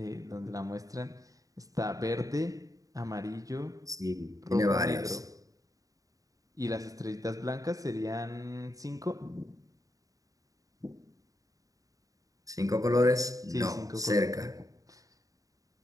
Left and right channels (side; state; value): left; late; 0.17 ms